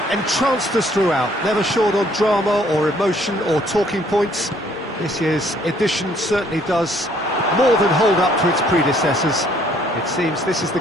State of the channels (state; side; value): normal; both; correlation 0.63